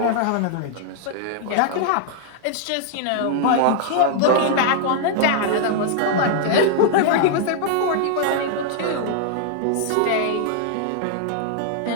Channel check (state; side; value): different; both; correlation -0.01